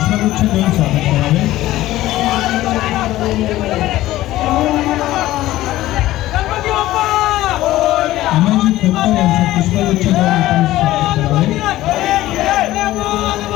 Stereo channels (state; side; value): quieter; right; 15.7 dB